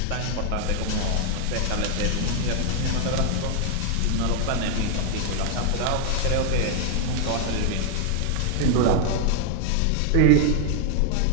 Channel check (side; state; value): both; different; correlation 0.00